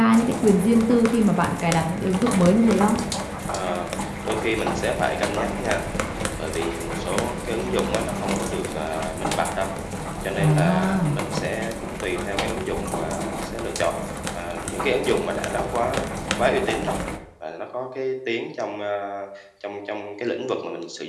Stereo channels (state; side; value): identical; both; correlation 1.00